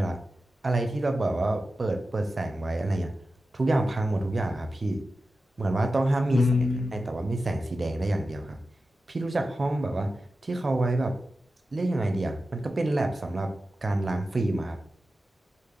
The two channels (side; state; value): both; normal; correlation 0.92